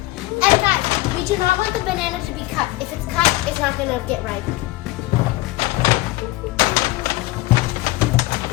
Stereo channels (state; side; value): quieter; right; 18.9 dB